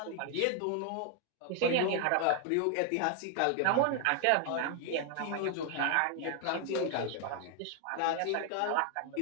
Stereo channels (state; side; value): different; both; correlation 0.00